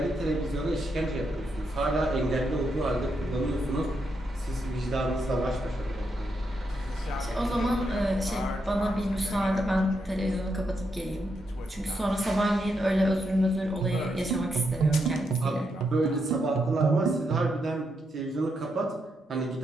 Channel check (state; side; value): normal; both; correlation 0.81